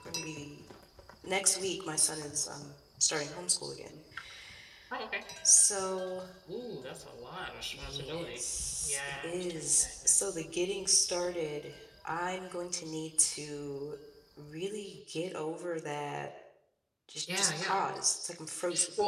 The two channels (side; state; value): both; identical; correlation 1.00